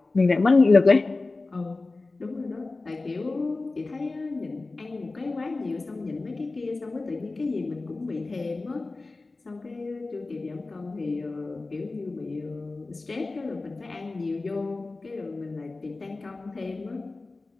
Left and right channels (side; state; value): right; quieter; 3.4 dB